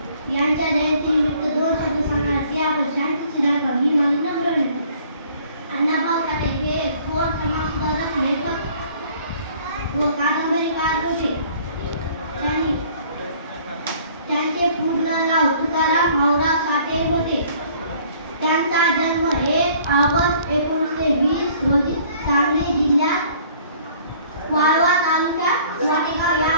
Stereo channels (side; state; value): both; inverted; correlation -0.56